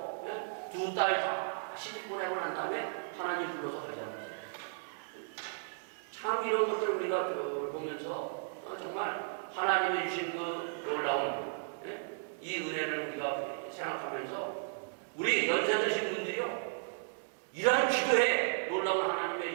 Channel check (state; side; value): silent; left; digital silence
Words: 2달 다 시집 보내고 난 다음에 하나님 불러서 가자는 거예요. 참 이런 것들을 우리가 보면서 정말 하나님이 주신 그 놀라운 이 은혜를 우리가 생각하면서 우리 연세 드신 분들이요, 이러한 기도에 놀라운